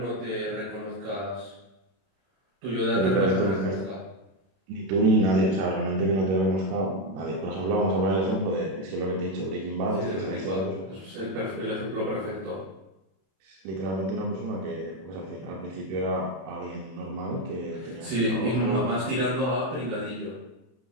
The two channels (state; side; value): late; left; 31 ms